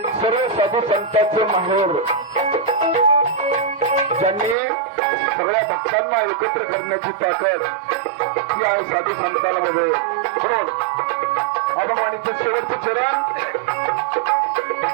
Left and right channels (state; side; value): drops out; left; at 4.5 s